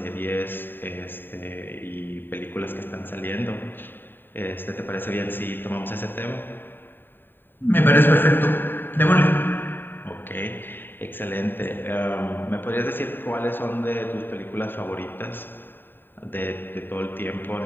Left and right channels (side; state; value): right; late; 0.095 ms